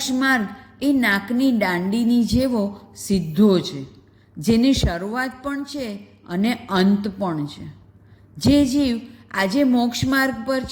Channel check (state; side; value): identical; both; correlation 1.00